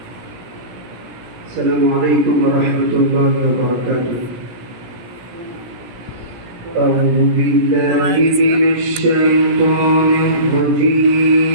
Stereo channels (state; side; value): late; left; 17 ms